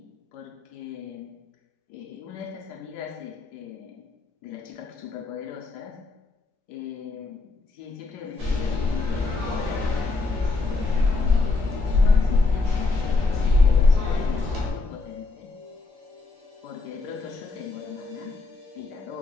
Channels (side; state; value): right; quieter; 3.7 dB